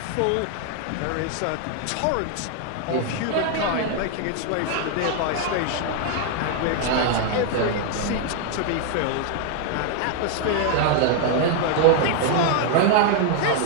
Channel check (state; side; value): different; both; correlation 0.00